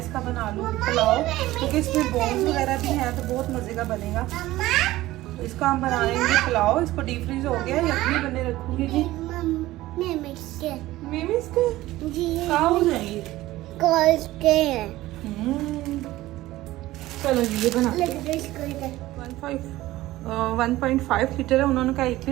बना लूँ पुलाव, क्योंकि इसमें बोन्स वगैरह भी हैं तो बहुत मज़े का बनेगा। इसका हम बनाएंगे पुलाव। इसको डीप फ्रीज हो गया, यखनी बने रखूंगी जी। मेमिस के जी कहाँ हो जाएंगे चलो जी ये बना 1.5 लीटर है। उन्होंने कहा 1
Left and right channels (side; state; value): left; quieter; 16.7 dB